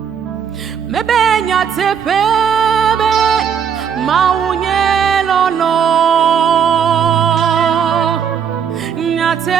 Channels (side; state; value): left; quieter; 7.6 dB